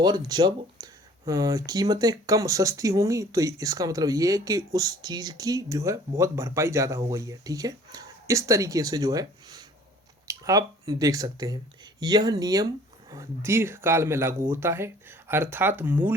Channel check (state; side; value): normal; both; correlation 0.52